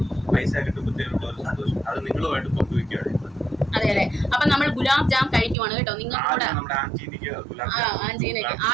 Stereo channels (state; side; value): drops out; left; at 5.6 s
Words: പൈസ കിട്ടുമ്പോഴത്തേനുള്ള ഒരു സന്തോഷം അത് നിങ്ങളുമായിട്ട് പങ്കുവയ്ക്കുകയാണ്. അതെ അതെ. അപ്പൊ നമ്മൾ ഗുലാബ് ജാം കഴിക്കുവാണ് കേട്ടോ. നിങ്ങൾക്ക് കൂടെ